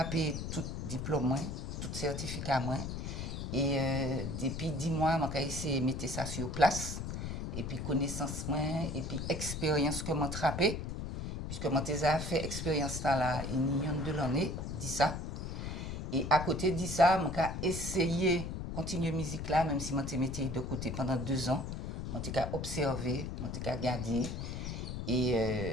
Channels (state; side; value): noise; left; rumble, 5 dB below the sound